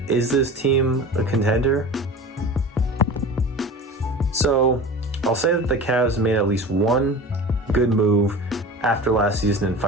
is this team a contender? So I'll say that the Cavs made at least one good move after last season in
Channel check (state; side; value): normal; both; correlation 0.35